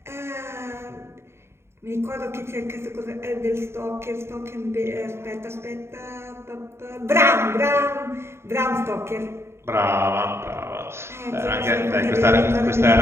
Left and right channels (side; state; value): left; late; 0.12 ms